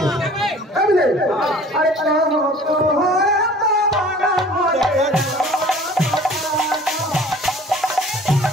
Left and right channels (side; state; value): both; normal; correlation 0.48